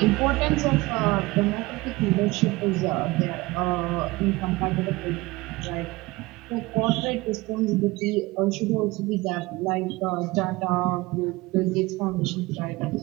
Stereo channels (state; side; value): quieter; left; 21.5 dB